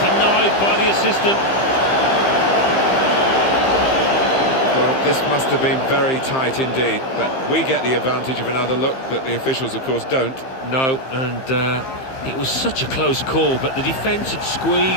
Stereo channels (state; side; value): late; right; 15 ms